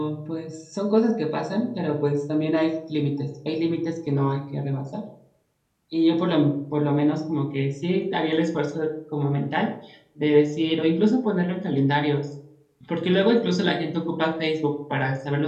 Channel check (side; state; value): both; identical; correlation 1.00